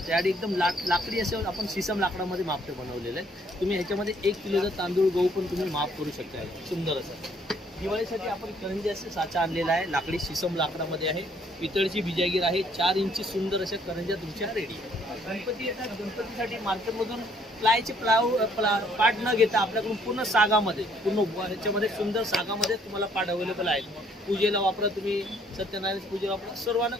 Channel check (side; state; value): both; normal; correlation 0.64